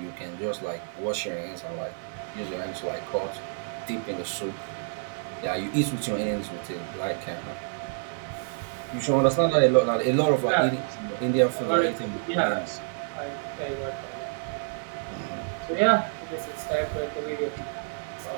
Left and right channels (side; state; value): left; silent; 59 dB below the other